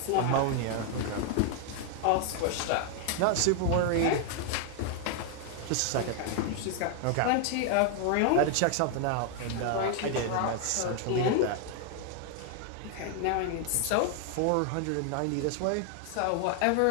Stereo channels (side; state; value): both; different; correlation 0.00